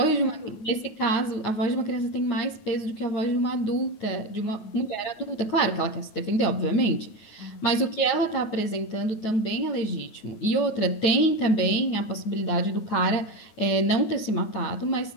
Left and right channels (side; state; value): right; late; 9.4 ms